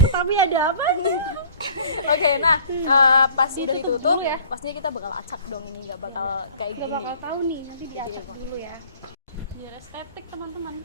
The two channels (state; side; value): inverted; both; correlation -0.51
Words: tapi ada apa? Oke, nah pas udah Ditutup ditutup, dulu ya. pastinya kita bakal acak dong ini, nggak bakal kayak Nggak gini. bakal tahu nih, nanti diacak dulu ya. Biar estetik teman-teman.